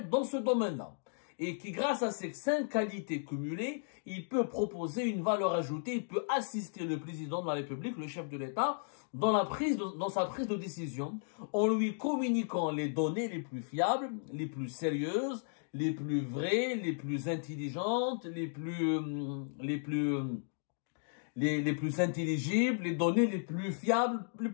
dans ce domaine-là. Et qui, grâce à ces 5 qualités cumulées, il peut proposer une valeur ajoutée, il peut assister le président de la République, le chef de l'État, dans sa prise de décision, en lui communiquant les données les plus fiables, les plus sérieuses, les plus vraies, les plus intelligentes, les plus intelligibles, les données les plus fiables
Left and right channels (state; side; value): silent; right; digital silence